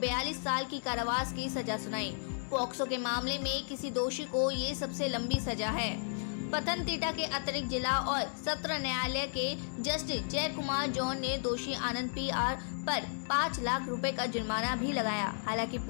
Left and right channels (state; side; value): silent; right; digital silence